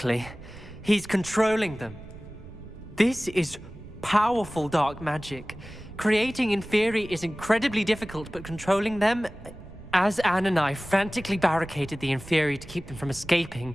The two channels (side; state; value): right; noise; rumble, 17 dB below the sound